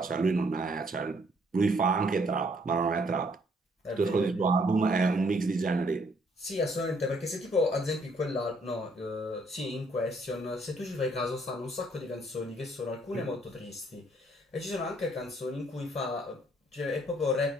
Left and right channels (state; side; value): normal; both; correlation 0.66